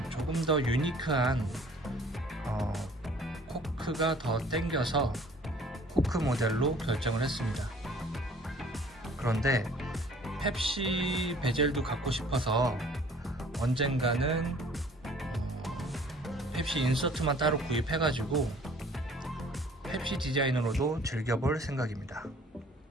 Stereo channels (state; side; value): normal; both; correlation 0.53